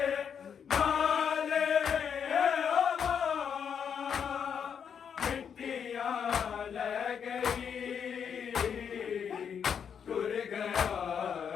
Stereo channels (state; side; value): quieter; right; 7.5 dB